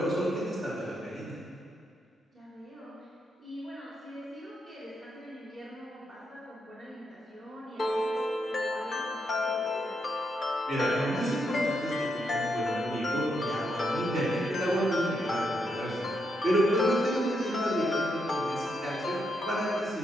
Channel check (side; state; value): both; normal; correlation 0.80